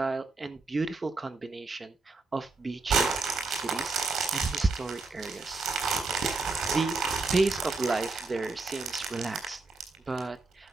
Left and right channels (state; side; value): quieter; left; 3.8 dB